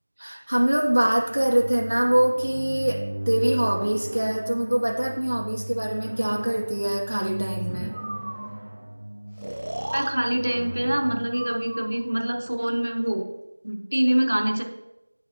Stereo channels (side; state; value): both; inverted; correlation -1.00